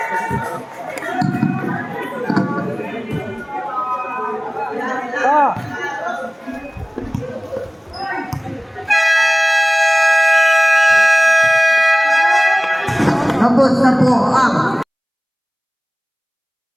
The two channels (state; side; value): identical; both; correlation 1.00